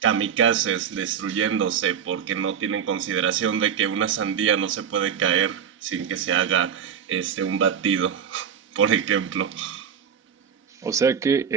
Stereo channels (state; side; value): quieter; left; 7.9 dB